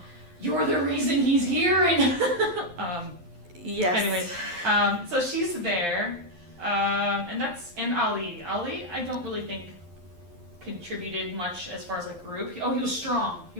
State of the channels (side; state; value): left; late; 11 ms